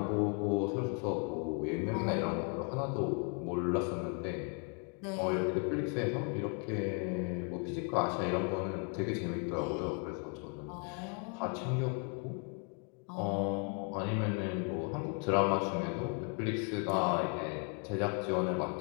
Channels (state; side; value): quieter; right; 39.5 dB